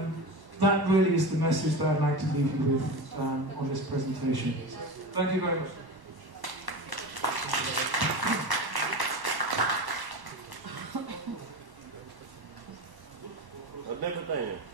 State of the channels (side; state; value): left; late; 1.1 ms